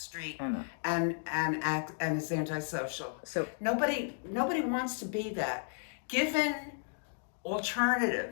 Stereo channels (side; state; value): right; silent; digital silence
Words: and is antisocial. So nobody wants to be that. Given